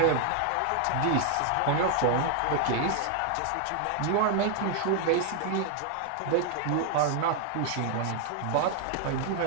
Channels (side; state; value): both; different; correlation 0.00